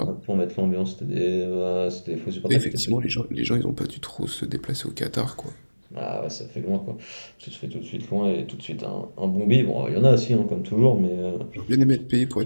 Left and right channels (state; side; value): inverted; both; correlation -1.00